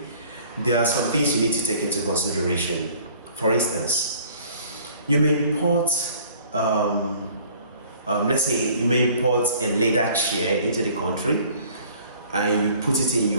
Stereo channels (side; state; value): both; inverted; correlation -0.53